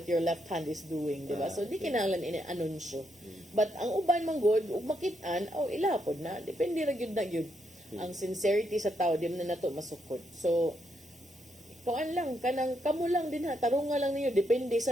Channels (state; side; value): normal; both; correlation 0.78